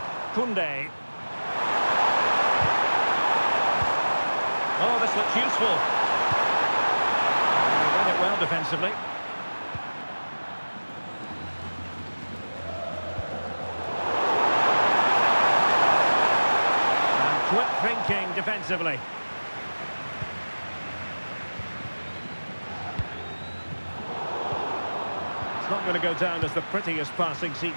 Koundé. Oh, this looks useful. He read it well defensively. And quick thinking defensively. It's not going to go down as the prettiest passing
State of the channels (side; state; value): both; inverted; correlation -1.00